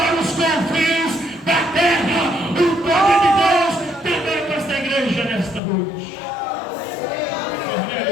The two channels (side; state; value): right; drops out; at 5.6 s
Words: os confins da terra. O poder de Deus também para esta igreja nesta noite.